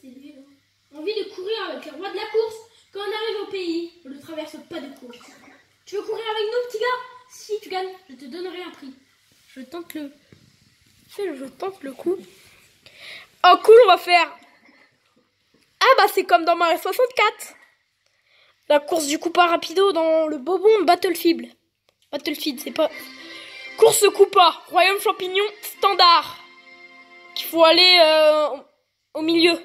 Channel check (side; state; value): both; identical; correlation 1.00